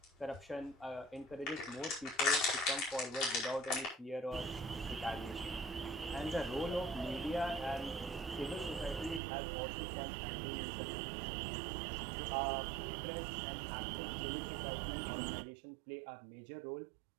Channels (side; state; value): left; drops out; at 9.2 s